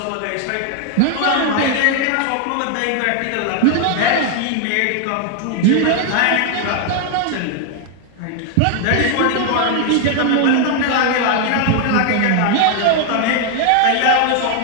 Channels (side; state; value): both; different; correlation 0.00